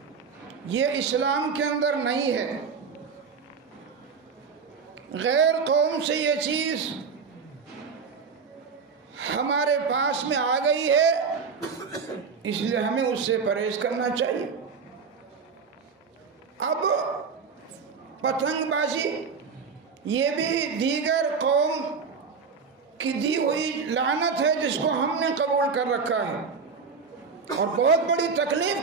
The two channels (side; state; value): left; quieter; 5.5 dB